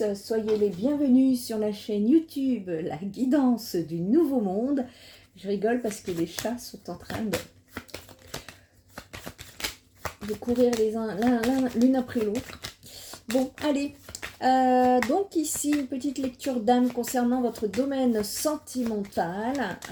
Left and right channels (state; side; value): identical; both; correlation 1.00